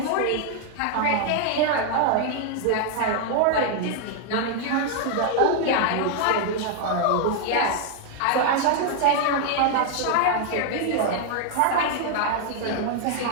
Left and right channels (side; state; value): both; different; correlation 0.00